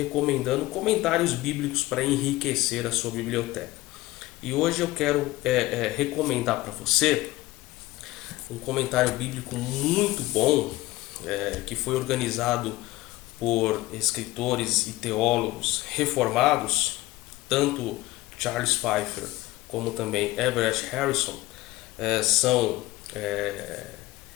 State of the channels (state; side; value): quieter; right; 18.5 dB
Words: comentários bíblicos para enriquecer a sua biblioteca. E hoje eu quero recomendar para você um comentário bíblico muito bom, que foi organizado por escritores e teólogos reformados, tanto Charles Pfeiffer como também Everett Harrison, são